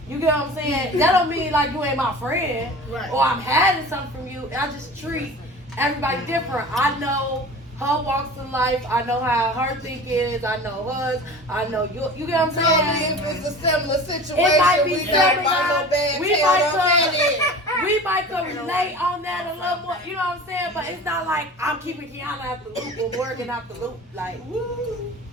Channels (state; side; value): normal; both; correlation 0.38